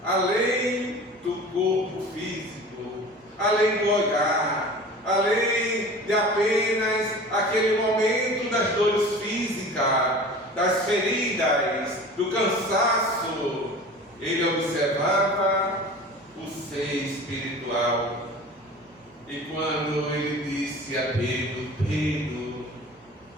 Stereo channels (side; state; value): both; normal; correlation 0.39